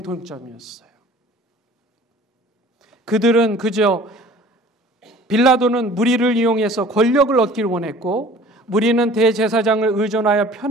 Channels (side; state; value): both; normal; correlation 0.48